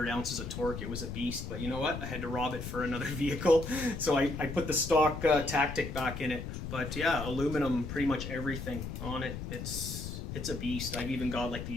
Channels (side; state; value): left; noise; rumble, 6 dB below the sound